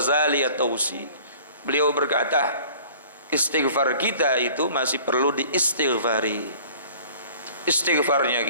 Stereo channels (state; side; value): inverted; both; correlation -0.49